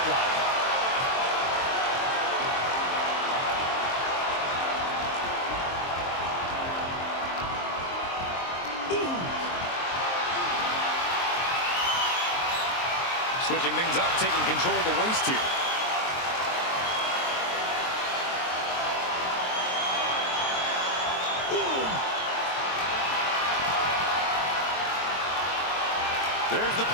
Switching things up, taking control of the waist here. Ooh. There's the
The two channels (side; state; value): right; late; 23 ms